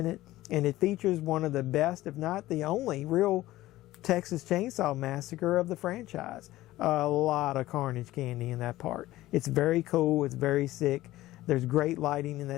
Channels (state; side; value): quieter; right; 16.3 dB